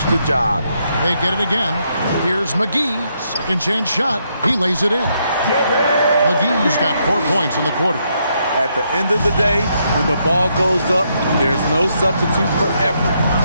the job. They get it again. Here's McGee. Second chance shot. He lays it in. McGee's got 4 points in the quarter. At the end of the day, when the ball goes up, there's no substitute for effort.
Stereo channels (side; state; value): both; inverted; correlation -0.77